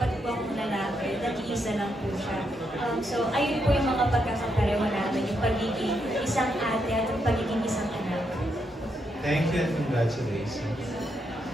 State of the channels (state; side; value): normal; both; correlation 0.80